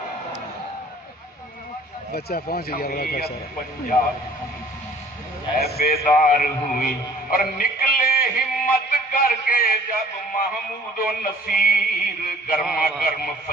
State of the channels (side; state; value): both; normal; correlation 0.53